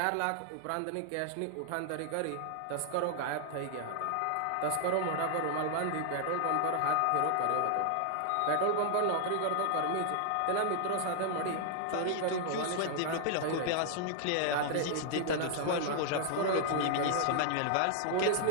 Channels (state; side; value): different; both; correlation -0.01